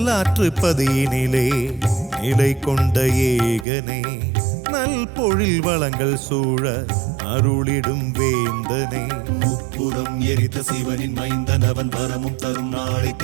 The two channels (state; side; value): drops out; left; at 3.7 s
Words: பதியினிலே நிலை கொண்ட ஏகனே, நல் பொழில் வளங்கள் சூழ அருளிடும் வேந்தனே. முப்புறம் எரித்த சிவனின் மைந்தன் அவன் வரமும் தரும் நாளை